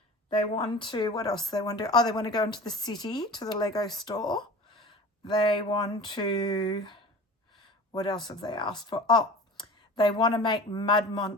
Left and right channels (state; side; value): normal; both; correlation 0.38